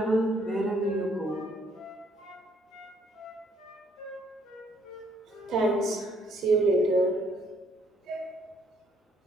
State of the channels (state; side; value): normal; both; correlation 0.67